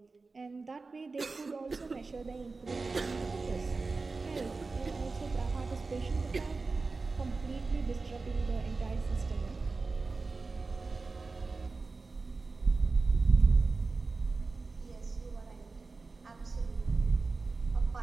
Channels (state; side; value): quieter; left; 3.9 dB